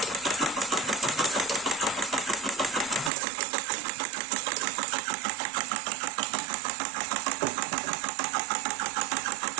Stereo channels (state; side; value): drops out; left; at 3.1 s